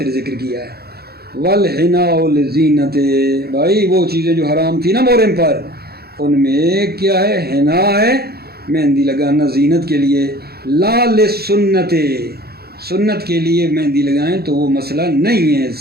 ذکر کیا ہے. وَالْحِنَاءُ لِلزِّينَةِ بھائی وہ چیزیں جو حرام تھی نا محرم پر ان میں کیا ہے؟ حنا ہے, مہندی لگانا زینت کے لیے. لا للسنت سنت کے لیے مہندی لگائیں تو وہ مسئلہ نہیں ہے,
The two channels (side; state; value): left; late; 0.46 ms